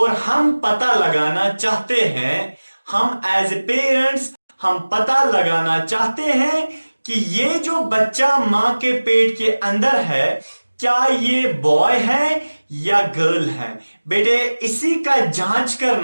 हम पता लगाना चाहते हैं, हम एज ए पेरेंट्स हम पता लगाना चाहते हैं कि ये जो बच्चा मां के पेट के अंदर है क्या ये बॉय है या गर्ल है। बेटे इसी का जांच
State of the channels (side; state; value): both; inverted; correlation -1.00